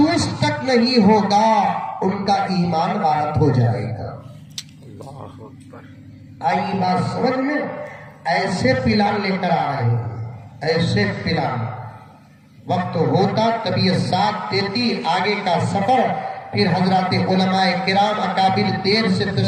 तक नहीं होगा, उनका ईमान गायब हो जाएगा। आई बात समझ में? ऐसे प्लान लेकर आ रहे हैं, ऐसे प्लान। वक्त होता तबीयत साथ देती, आगे का सफर फिर हजरत उलमाए किराम अकाबिर देर से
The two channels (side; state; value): both; identical; correlation 1.00